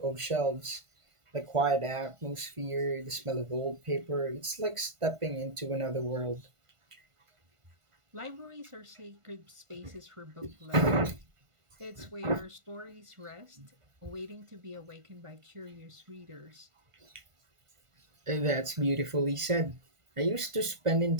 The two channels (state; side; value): late; left; 1.5 ms